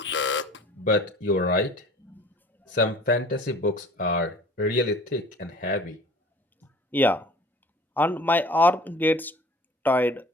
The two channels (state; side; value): normal; both; correlation 0.46